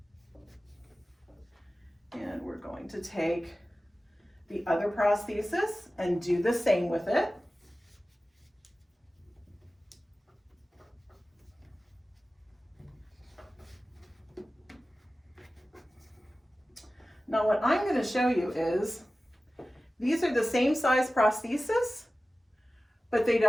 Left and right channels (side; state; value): both; normal; correlation 0.96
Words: And we're going to take the other prosthesis and do the same with it. Now what I'm going to show you is these are the same size prosthesis, but they